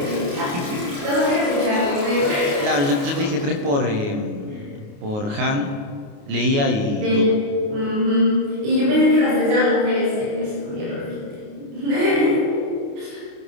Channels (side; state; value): left; late; 28 ms